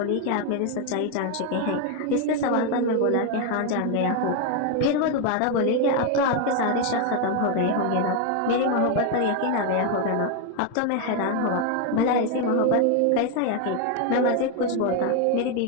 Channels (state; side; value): different; both; correlation 0.01